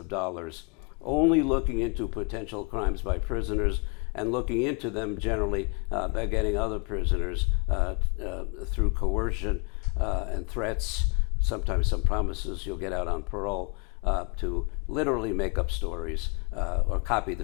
dollars only looking into potential crimes by prisoners and looking into them generally by getting other prisoners through coercion and threats, sometimes some promises you'll get out on parole, to literally make up stories or copy the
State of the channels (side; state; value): right; quieter; 35.4 dB